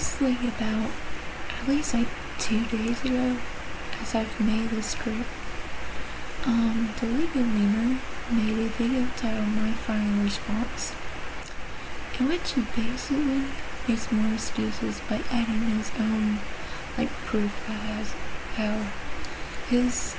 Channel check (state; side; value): identical; both; correlation 1.00